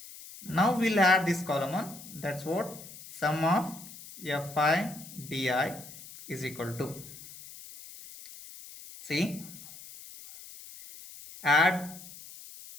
Now we'll add this column on. That's what sum of fi di is equal to. See, add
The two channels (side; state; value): left; noise; hiss, 16 dB below the sound